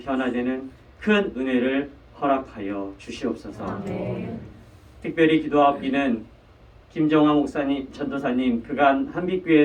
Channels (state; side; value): identical; both; correlation 1.00